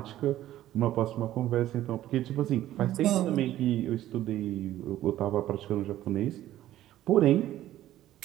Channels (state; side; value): quieter; left; 13.5 dB